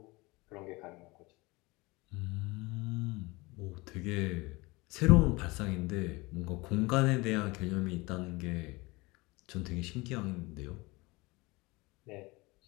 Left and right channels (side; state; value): right; quieter; 23.5 dB